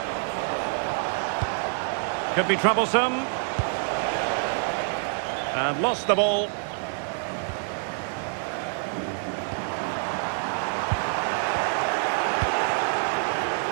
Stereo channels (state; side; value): silent; left; 60 dB below the other